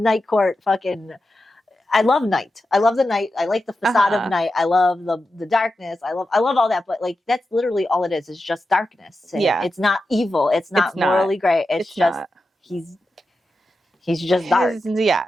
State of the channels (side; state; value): both; normal; correlation 0.90